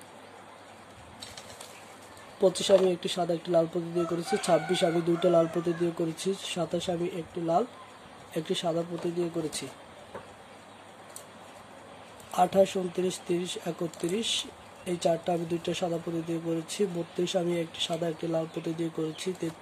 25 আমি একটি সাদা একটি লাল পুঁতি দিয়ে করেছি। 26 আমি 2টা লাল পুঁতি দিয়ে করেছি। 27 আমি একটি লাল একটি সাদা পুঁতি দিয়ে করেছি। 28 29 30 31 এই 4টা আমি 2টা সাদা পুঁতি দিয়ে করেছি। 32 আমি একটি সাদা একটি লাল পুঁতি দিয়ে করেছি।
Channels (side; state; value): both; identical; correlation 1.00